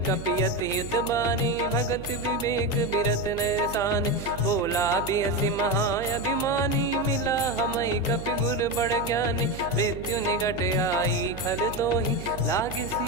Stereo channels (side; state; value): right; noise; hum, 11 dB below the sound